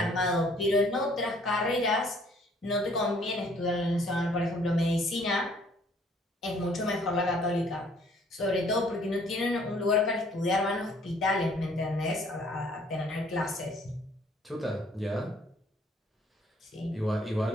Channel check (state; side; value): normal; both; correlation 0.60